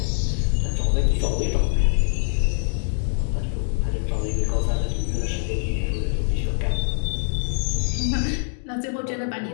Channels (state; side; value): silent; right; 63 dB below the other